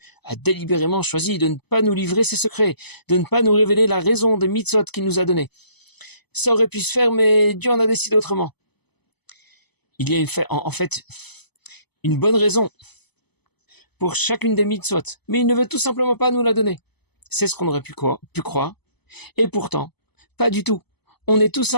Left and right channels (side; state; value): right; late; 0.99 ms